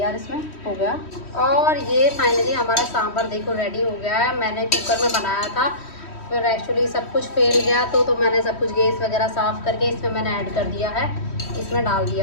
इसमें हो गया। और ये फाइनली हमारा सांभर देखो रेडी हो गया है। मैंने कुकर में बनाया था, फिर एक्चुअली सब कुछ फेल गया तो मैंने सब कुछ गैस वगैरह साफ़ करके इसमें मैंने ऐड कर दिया है, इसमें डाल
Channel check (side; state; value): right; late; 3.1 ms